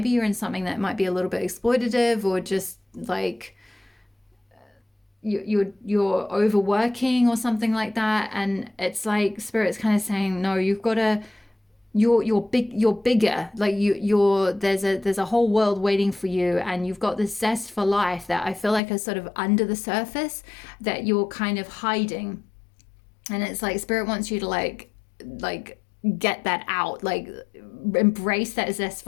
you're in something that might be a little bit exploitative, or just like you're overworking or something like that. And it's like Spirit's kind of saying, no, you've got to, you're bigger. Like there's a whole world waiting for you, and you've got this zest for life that I feel like is sort of under the surface that you're kind of hiding. And it's like Spirit wants you to like get that out, like embrace that zest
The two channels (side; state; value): right; drops out; at 18.8 s